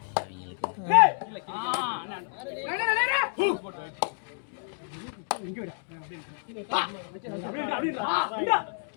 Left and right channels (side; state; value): right; silent; 58 dB below the other